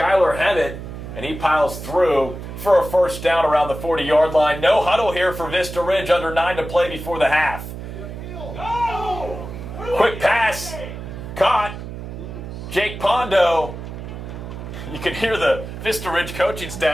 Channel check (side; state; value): right; noise; hum, 10 dB below the sound